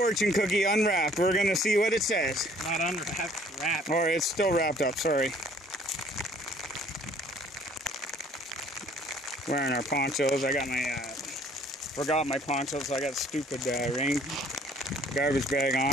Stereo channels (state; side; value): normal; both; correlation 0.58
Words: cookie unwrapped. We're gonna see what it says. Not unwrapped, wrapped. Or it's still wrapped up, sorry. Wearing our ponchos. I got my, forgot my ponchos, so I got stupid rain garbage bag